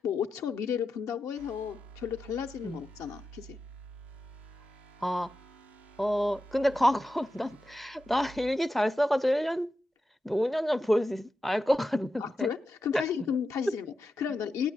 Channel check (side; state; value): both; normal; correlation 0.90